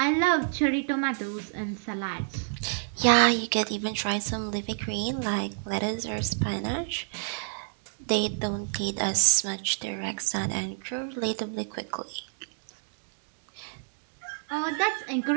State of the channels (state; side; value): silent; left; digital silence